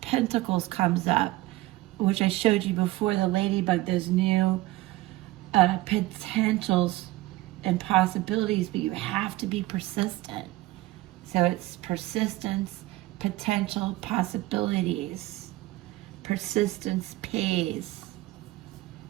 Pentacles comes up, which I showed you before, the ladybug, those new potentials and possibilities, but you have to be persistent. So it's persistence, potential, possibilities. Persistence pays.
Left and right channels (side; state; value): left; quieter; 18.2 dB